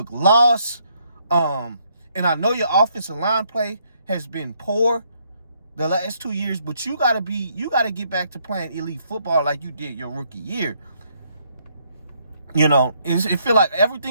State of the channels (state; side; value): inverted; both; correlation -0.71